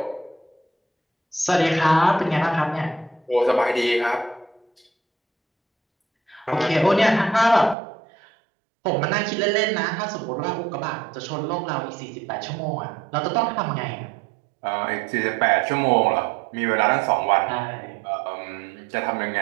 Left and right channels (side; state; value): left; drops out; at 7.8 s